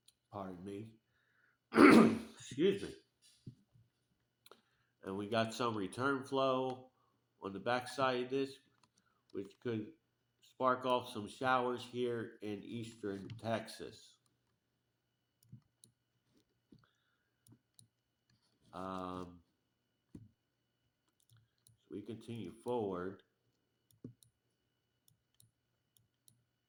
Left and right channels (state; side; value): identical; both; correlation 1.00